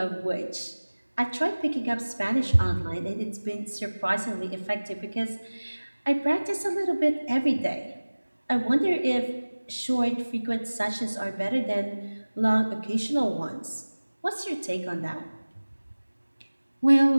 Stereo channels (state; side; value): inverted; both; correlation -1.00